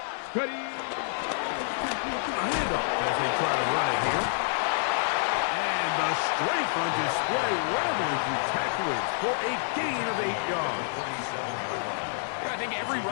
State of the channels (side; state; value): right; silent; 57 dB below the other